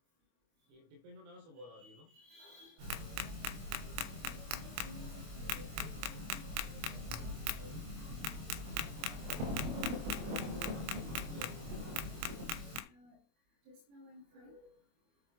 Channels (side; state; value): left; late; 25 ms